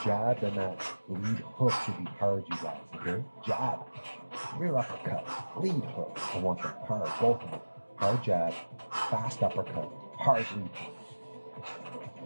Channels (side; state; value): both; inverted; correlation -1.00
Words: jab and that lead hook to be hard, you guys, okay? Jab, rear uppercut, lead hook. I want them hard, both of them. Hard jab, fast uppercut, hard lead hook.